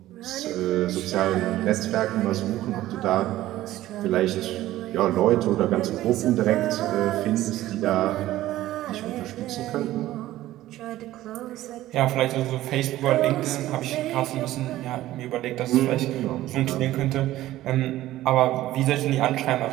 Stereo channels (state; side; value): quieter; left; 15.1 dB